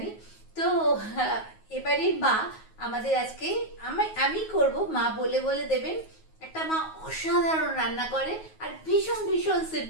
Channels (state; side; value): late; right; 9.4 ms